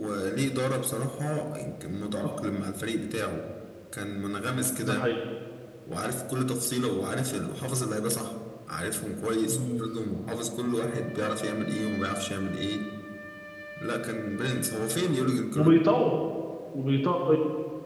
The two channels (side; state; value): both; identical; correlation 1.00